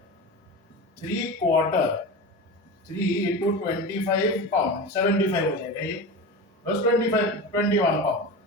3 क्वार्टर, 3 इंटू 25 पाउंड 75 हो जाएगा ये, प्लस 21 पाउंड।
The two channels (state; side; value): normal; both; correlation 0.27